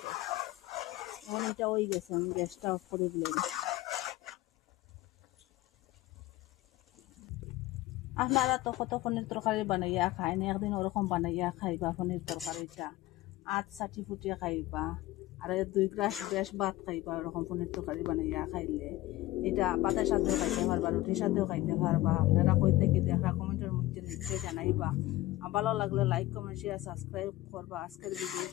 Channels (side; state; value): right; quieter; 17.1 dB